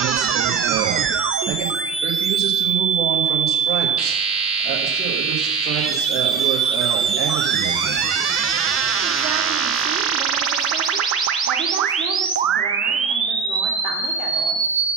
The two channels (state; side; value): quieter; left; 6.2 dB